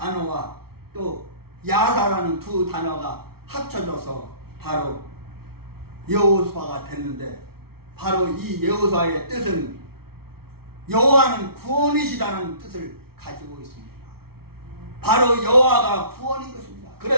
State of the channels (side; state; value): left; late; 0.95 ms